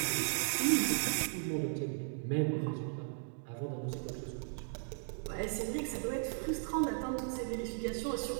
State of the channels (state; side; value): silent; left; digital silence